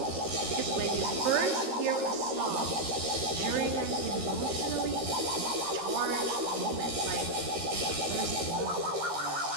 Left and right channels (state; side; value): late; left; 13 ms